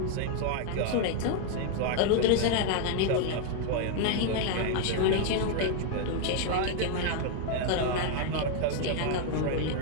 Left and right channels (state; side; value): different; both; correlation 0.00